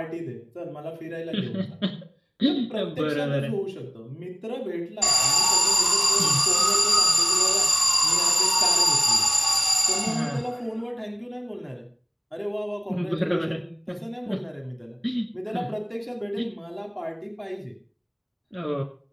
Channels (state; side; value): identical; both; correlation 1.00